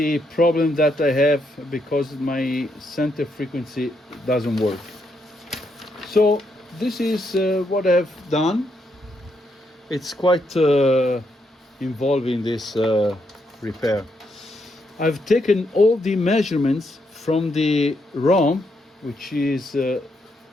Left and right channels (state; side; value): normal; both; correlation 0.78